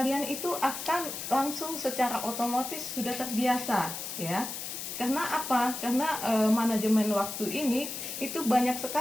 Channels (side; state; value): left; noise; hiss, 6 dB below the sound